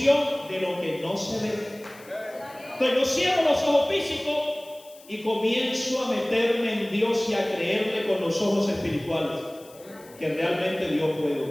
de lo que no se ve. Entonces yo cierro los ojos físicos y comienzo a meterme en Dios y a creerle con los ojos espirituales que realmente Dios puede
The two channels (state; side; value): noise; left; hiss, 23 dB below the sound